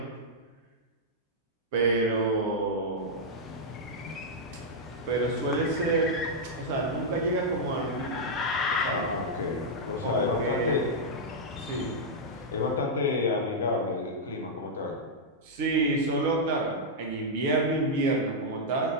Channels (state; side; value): normal; both; correlation -0.07